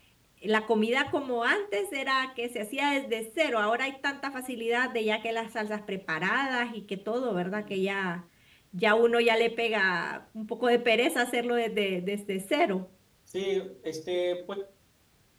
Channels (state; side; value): identical; both; correlation 1.00